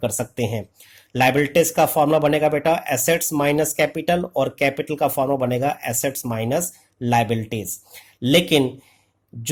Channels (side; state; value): both; identical; correlation 1.00